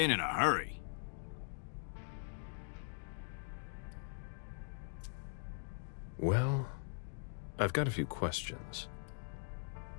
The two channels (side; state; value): right; silent; digital silence